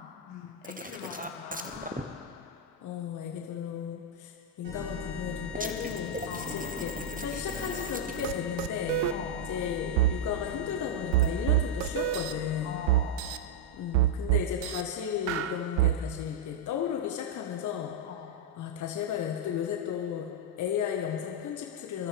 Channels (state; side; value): normal; both; correlation -0.01